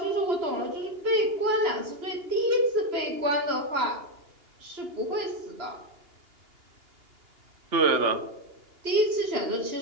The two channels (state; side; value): late; left; 2.8 ms